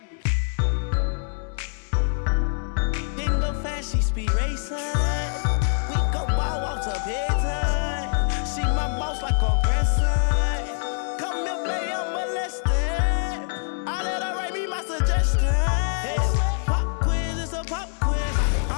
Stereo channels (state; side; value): silent; right; digital silence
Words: Didn't go fast, she speed racing. We go wild walks up bedtime. She my boss like a grandson. Come here, baby, I'm molested. I let her write me my suggestions. Pop quiz, it's a pop quiz.